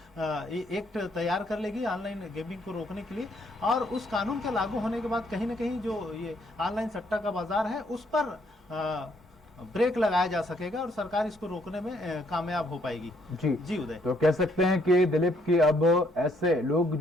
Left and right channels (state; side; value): normal; both; correlation 0.69